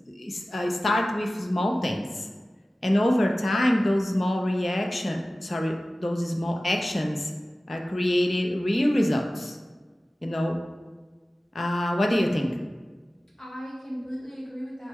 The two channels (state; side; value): normal; both; correlation 0.97